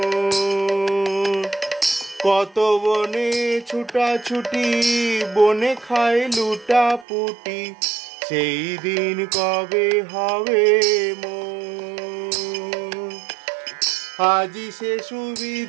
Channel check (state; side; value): drops out; left; at 7.1 s